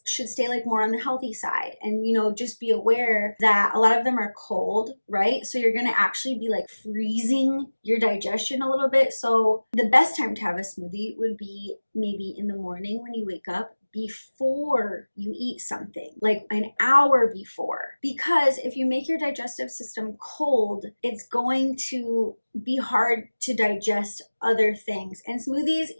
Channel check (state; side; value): inverted; both; correlation -1.00